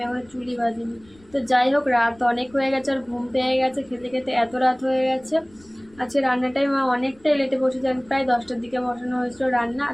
এখন চুলই বাঁধিনি। তো যাই হোক, রাত অনেক হয়ে গেছে, আর ঘুম পেয়ে গেছে, খেতে খেতে এত রাত হয়ে গেছে। আজকে রান্নাটাই মা অনেকটাই লেটে বসেছে, প্রায় 10টার দিকে বসানো হয়েছিল রান্না,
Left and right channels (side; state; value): left; noise; rumble, 29 dB below the sound